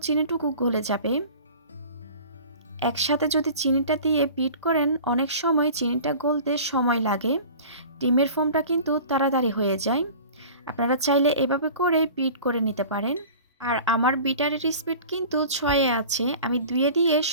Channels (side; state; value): both; inverted; correlation -0.41